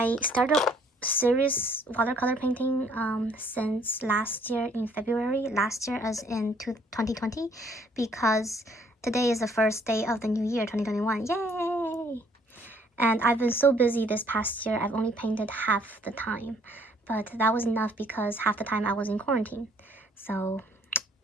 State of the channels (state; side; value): normal; both; correlation 0.62